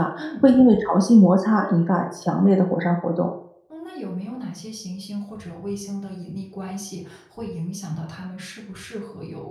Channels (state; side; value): identical; both; correlation 1.00